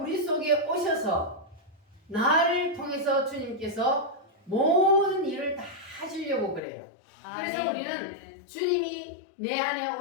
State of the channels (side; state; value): right; drops out; at 6.6 s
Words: 속에 오셔서 나를 통해서 주님께서 모든 일을 다 하시려고 그래요. 그래서 우리는 주님이 내 안에